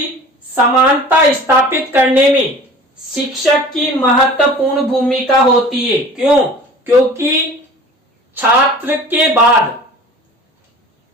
समानता स्थापित करने में शिक्षक की महत्वपूर्ण भूमिका होती है। क्यों? क्योंकि छात्र के बाद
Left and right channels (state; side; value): normal; both; correlation 0.43